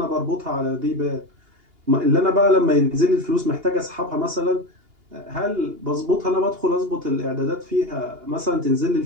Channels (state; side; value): late; left; 2.8 ms